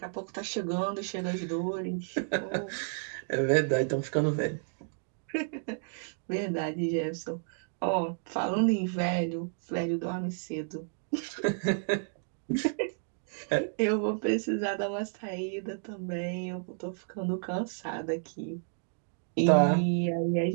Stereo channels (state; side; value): silent; left; digital silence